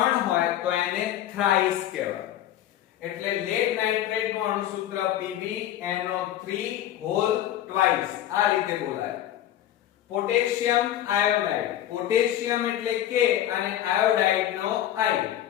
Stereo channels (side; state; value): right; quieter; 12.1 dB